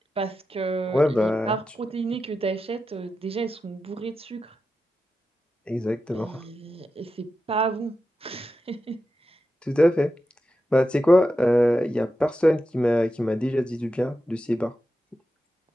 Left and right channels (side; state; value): both; normal; correlation 0.90